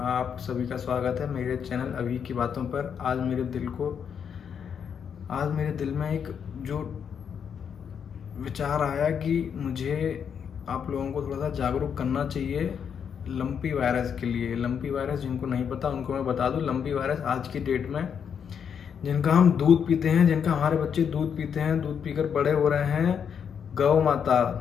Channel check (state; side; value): quieter; right; 7.5 dB